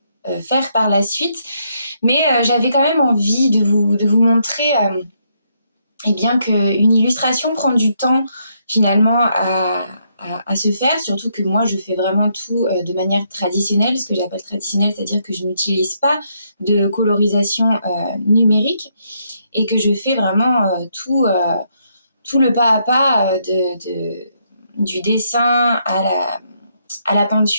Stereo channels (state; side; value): inverted; both; correlation -0.75